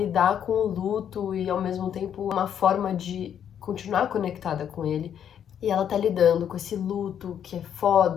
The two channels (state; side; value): quieter; right; 9.1 dB